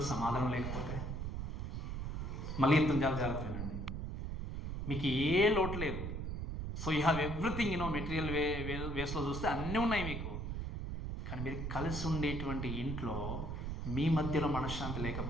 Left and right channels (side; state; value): right; noise; rumble, 4 dB below the sound